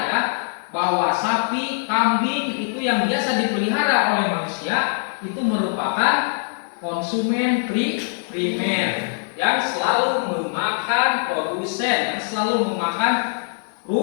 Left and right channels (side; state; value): right; silent; digital silence